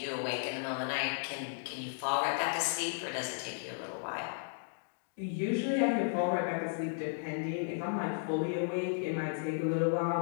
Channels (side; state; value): right; silent; digital silence